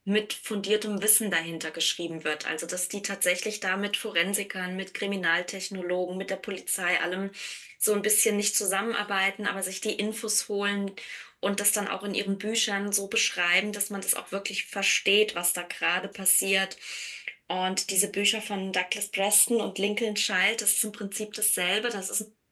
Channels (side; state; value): both; identical; correlation 1.00